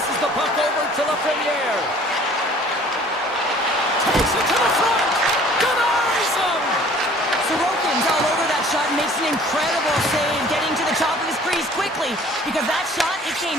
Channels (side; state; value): both; normal; correlation 0.52